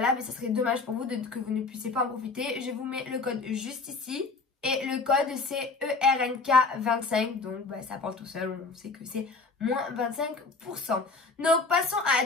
Et ça serait dommage pour vous que vous ne puissiez pas en profiter. Je vous mets le code juste ici. Et le code c'est ERNK25, donc ça parle tout seul, on sait que c'est moins 25%. Donc passons à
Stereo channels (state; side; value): quieter; right; 4.1 dB